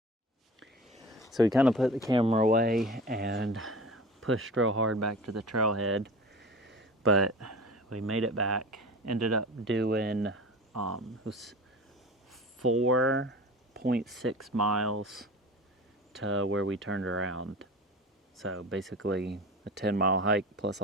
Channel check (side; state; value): both; normal; correlation 0.36